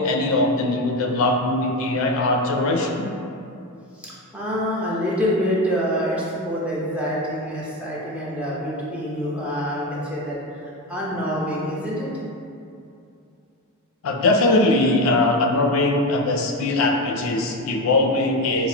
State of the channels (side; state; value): both; normal; correlation 0.16